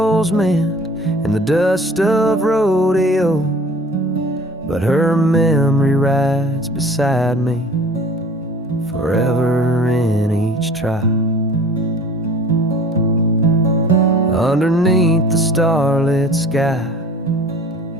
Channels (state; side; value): normal; both; correlation 0.47